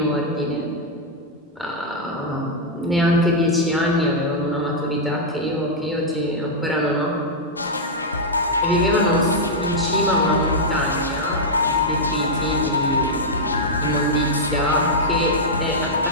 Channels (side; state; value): both; normal; correlation -0.05